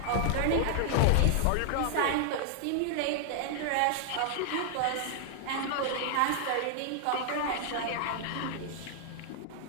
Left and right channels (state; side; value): different; both; correlation 0.00